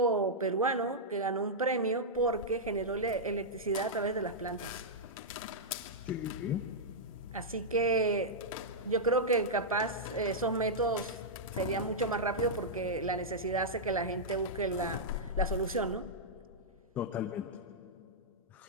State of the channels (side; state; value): both; normal; correlation -0.08